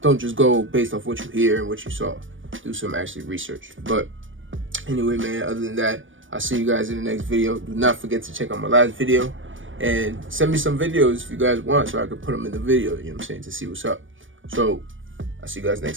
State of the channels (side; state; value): left; late; 0.57 ms